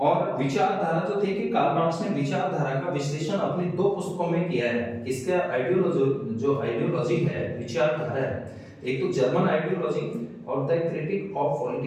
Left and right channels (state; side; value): identical; both; correlation 1.00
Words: विचारधारा जो थे कि कार्ल मार्क्स ने विचारधारा का विश्लेषण अपनी दो पुस्तकों में किया है। इसका आइडियोलॉजी जो आइडियोलॉजी है, विचारधारा है, एक तो जर्मन आइडियोलॉजी और the critique of